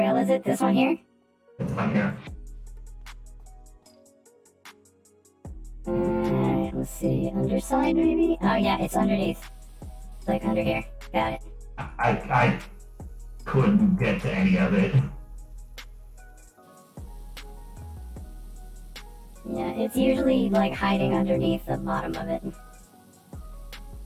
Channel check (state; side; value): identical; both; correlation 1.00